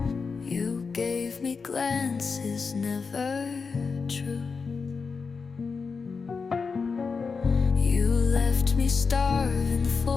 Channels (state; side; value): quieter; right; 5.0 dB